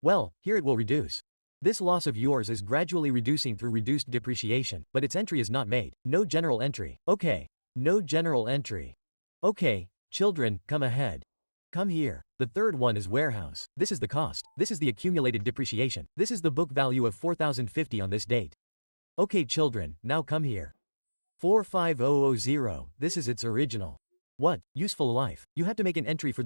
Well, here it will reduce. This loss of yours is gradually reducing through reduced depreciation, but its entry is not made. No general entry. Okay. No general entry. Okay, children, come ahead. Come here. The third one is warehouse. This is the cost. This is the accumulated depreciation. This is the book value of 4,050 on this date. Okay children, now come here. 45000, this is its original. What? Useful life. You have to make an entry for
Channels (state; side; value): inverted; both; correlation -1.00